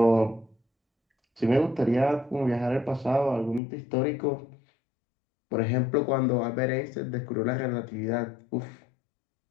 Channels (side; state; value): right; drops out; at 3.6 s